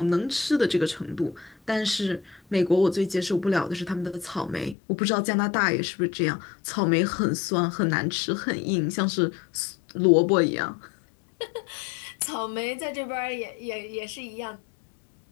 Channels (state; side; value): drops out; right; at 4.8 s